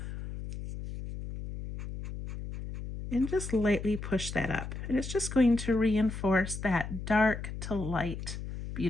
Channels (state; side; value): noise; left; hum, 8 dB below the sound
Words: and just lightly push that up. And it's just going to reinforce that dark to light,